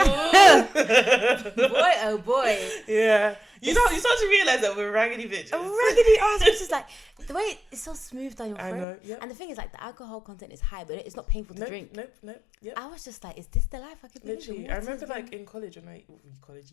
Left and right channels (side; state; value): right; drops out; at 8.8 s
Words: oh boy, yeah. You start to realise that we're raggedy bitches. A raggedy ass, which is like the way it's so smooth down your throat. I know, yep. And the thing is, like, the alcohol content is high, but it's not painful to drink. Nope. Yep. I was just like, is this the life I could live? Literally, I remember like in college